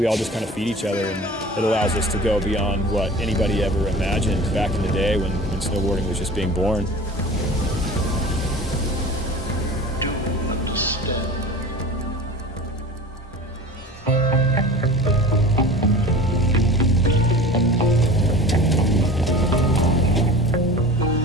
all just kind of feed each other, and it allows us to go beyond what anybody ever imagined back in the day when snowboarding was just being born.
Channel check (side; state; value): both; normal; correlation 0.39